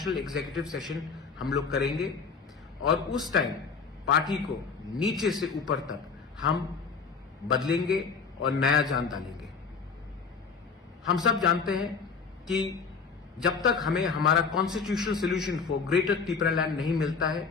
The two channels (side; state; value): right; quieter; 5.3 dB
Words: executive session हम लोग करेंगे और उस टाइम पार्टी को नीचे से ऊपर तक हम बदलेंगे और नया जान डालेंगे। हम सब जानते हैं कि जब तक हमें हमारा constitutional solution for greater Tipra land नहीं मिलता है,